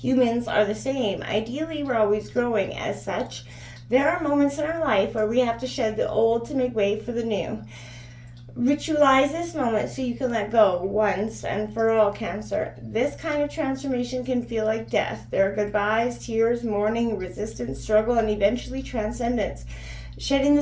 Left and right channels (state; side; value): identical; both; correlation 1.00